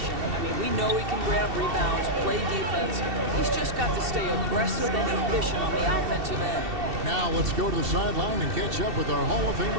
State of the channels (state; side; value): late; left; 2.7 ms